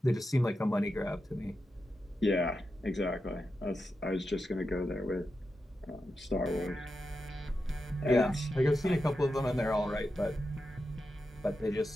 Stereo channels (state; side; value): normal; both; correlation 0.89